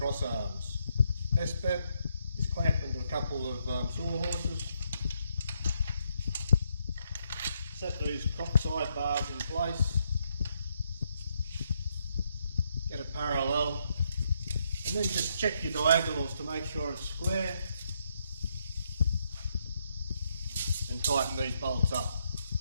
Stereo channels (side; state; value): both; inverted; correlation -0.77